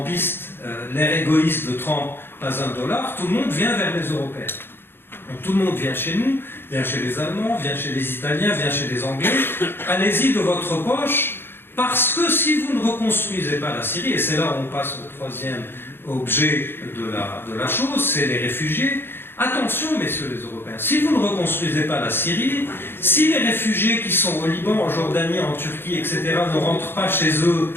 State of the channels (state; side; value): late; right; 0.10 ms